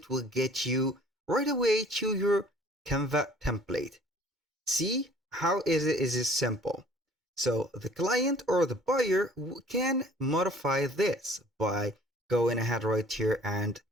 will get you right away to your Canva template. See how is it simple. So the client or the buyer can modify this by going ahead right here and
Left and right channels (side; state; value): both; normal; correlation 0.53